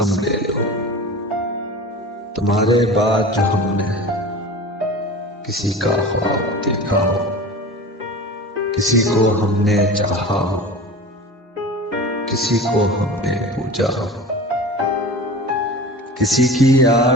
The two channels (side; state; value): both; normal; correlation 0.35